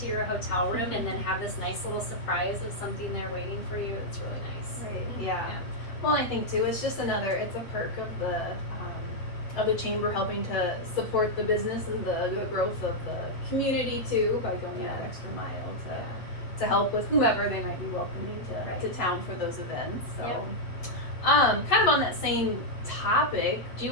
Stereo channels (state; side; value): late; right; 8.0 ms